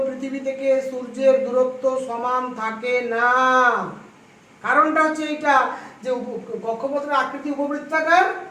পৃথিবী থেকে সূর্যের দূরত্ব সমান থাকে না। কারণটা হচ্ছে এইটা যে কক্ষপথের আকৃতি উপবৃত্তাকার,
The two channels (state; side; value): identical; both; correlation 1.00